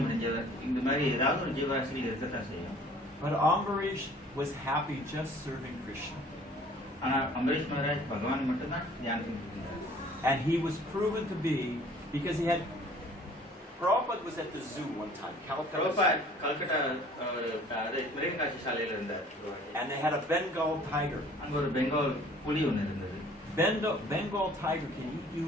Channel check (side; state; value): both; normal; correlation 0.53